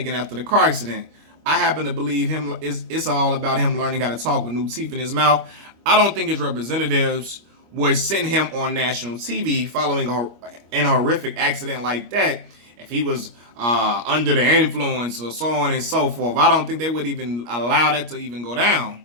after the car accident. I happen to believe it's all about him learning how to talk with new teeth in his mouth. I don't think his representatives would send him on national TV following an horrific accident like that if he was under the influence or so on and so forth. I don't think they would even allow that to even go down,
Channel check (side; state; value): left; late; 25 ms